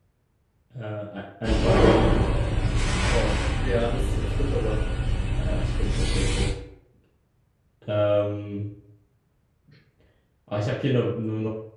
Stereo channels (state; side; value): identical; both; correlation 1.00